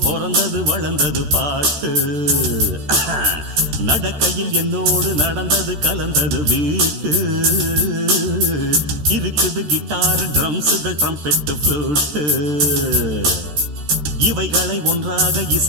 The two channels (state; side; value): late; left; 14 ms